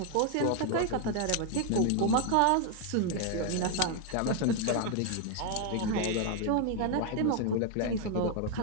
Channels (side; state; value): both; different; correlation 0.01